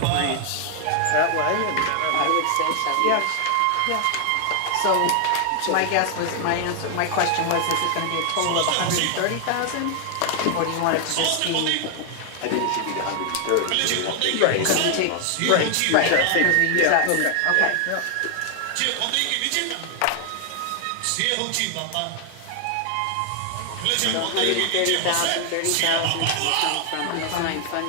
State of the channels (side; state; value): both; different; correlation 0.00